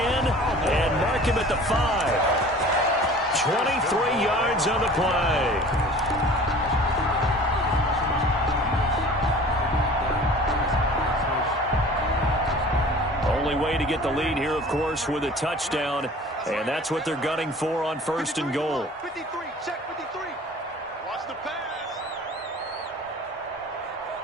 mark him at the 5. 23 yards on the play. Only way to get the lead here, of course, with a touchdown. And that's what they're gunning for on 1st and goal. 53, check 53. Watch the pass.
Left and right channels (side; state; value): both; normal; correlation 0.45